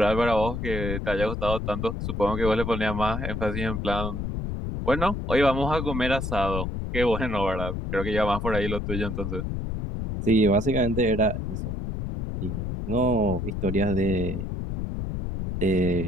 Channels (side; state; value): left; noise; rumble, 4 dB below the sound